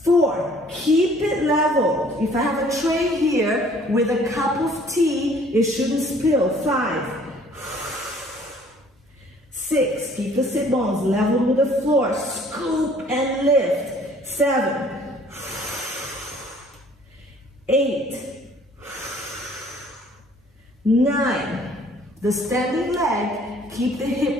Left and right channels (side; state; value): both; normal; correlation 0.56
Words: 4, keep it level. If I have a tray here with a cup of tea, it shouldn't spill. 5, 6, keep the sit bones level with the floor. Scoop and lift. 7, 8, 9. The standing leg, keep the